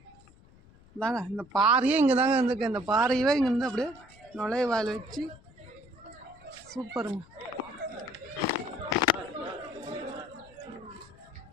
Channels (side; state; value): left; noise; rumble, 25 dB below the sound